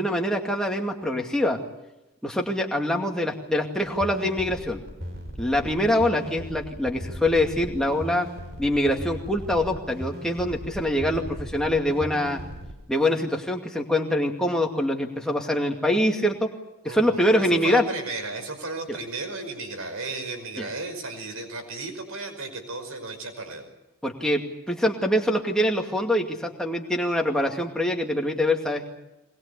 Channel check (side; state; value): both; normal; correlation 0.67